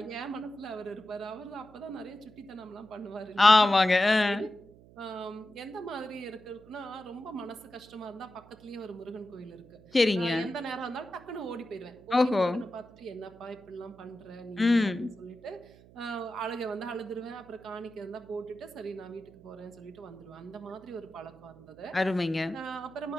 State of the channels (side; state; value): right; noise; hum, 23 dB below the sound